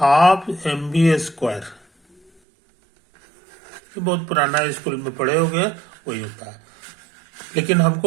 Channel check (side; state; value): left; drops out; at 2.3 s